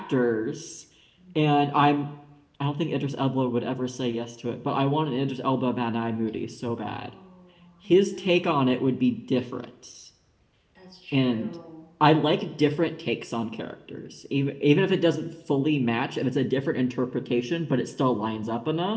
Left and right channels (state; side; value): identical; both; correlation 1.00